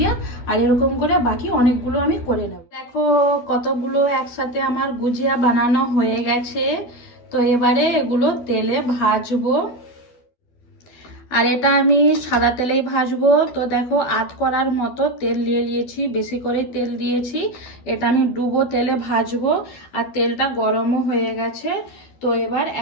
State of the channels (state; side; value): late; right; 12 ms